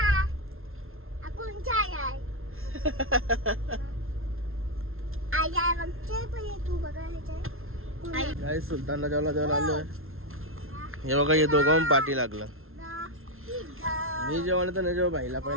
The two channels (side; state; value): left; late; 0.61 ms